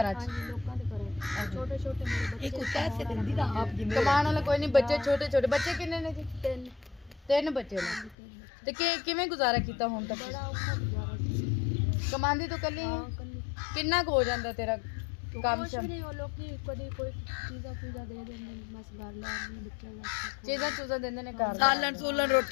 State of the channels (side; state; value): right; drops out; at 8.2 s